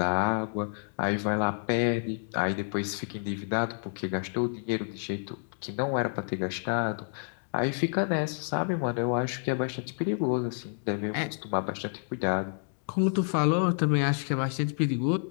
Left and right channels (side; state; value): right; silent; digital silence